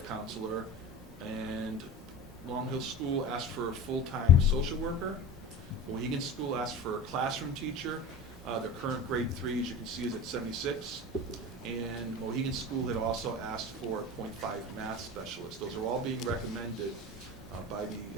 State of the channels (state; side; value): normal; both; correlation 0.31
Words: counselor. And Long Hill School asked for a full-time social worker. Mohegan School asked for a classroom teacher. Their current grade 3, as you can see, is at 76. And Mohegan School had also asked for a .5 math specialist. Those are all being recommended by